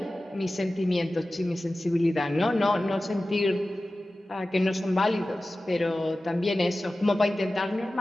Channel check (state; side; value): normal; both; correlation 0.96